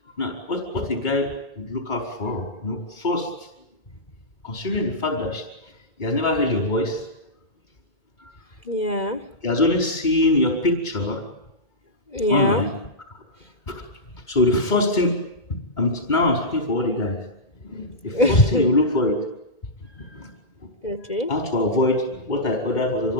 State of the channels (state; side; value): late; right; 2.2 ms